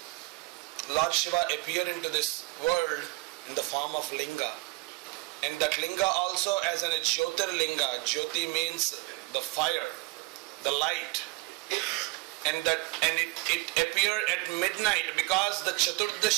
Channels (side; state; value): left; quieter; 23.8 dB